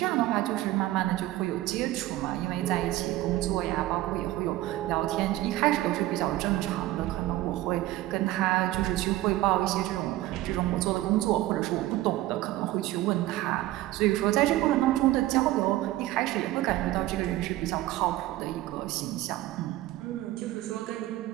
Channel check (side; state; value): left; quieter; 16.1 dB